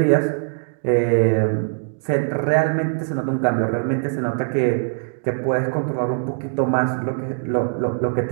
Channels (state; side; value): silent; left; 64 dB below the other